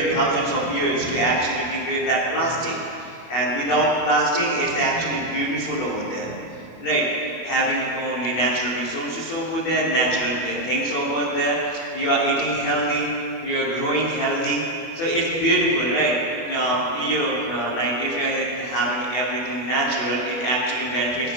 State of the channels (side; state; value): right; late; 25 ms